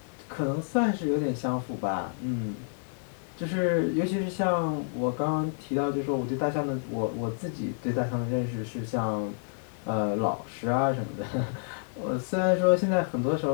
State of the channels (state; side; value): silent; right; 59 dB below the other